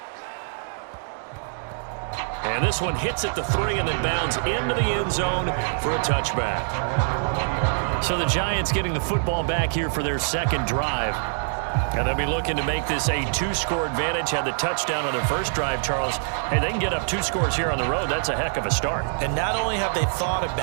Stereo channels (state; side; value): silent; left; digital silence